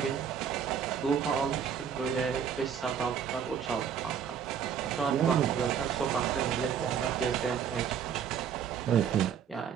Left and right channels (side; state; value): left; quieter; 7.8 dB